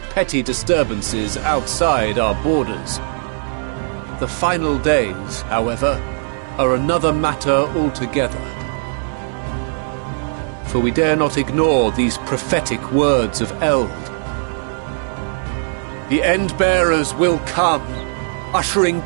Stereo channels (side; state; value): left; silent; digital silence